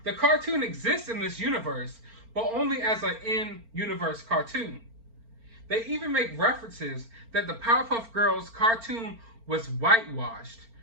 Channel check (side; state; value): left; late; 4.4 ms